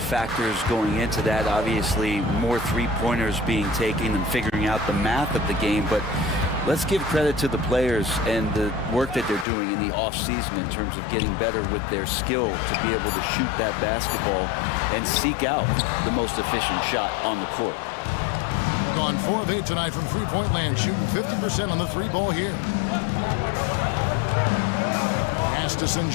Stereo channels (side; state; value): right; drops out; at 9.5 s